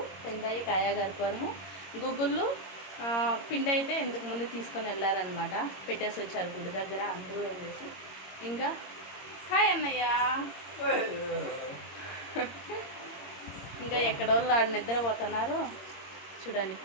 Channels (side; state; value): right; late; 22 ms